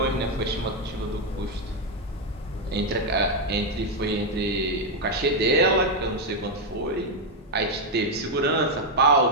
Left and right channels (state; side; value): normal; both; correlation 0.02